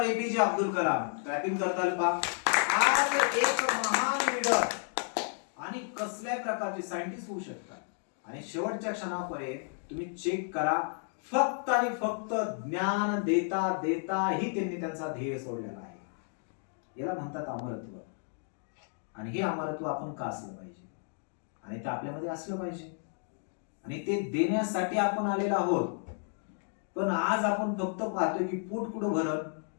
APJ Abdul Kalam. Clapping करताल पा. आज एक महान लीडर आणि कसल्या प्रकारचे सायंटिस्ट होऊ शकतात. आणि शेवटच्या क्षणापर्यंत तुम्ही चेक करा, फक्त आणि फक्त ज्ञान देता देता ही त्यांनी त्यांचा ध्येय सोडलेला आहे. याला म्हणतात अमरत्व. आणि हे अमरत्व आपण का असलं पाहिजे, आणि ते आपल्यामध्ये असलं पाहिजे, आणि ते देण्यासाठी आपण आलेलो आहोत. पण आज आपण फक्त पाहतोय की पोट कुठं भरल,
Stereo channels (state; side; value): silent; right; 56 dB below the other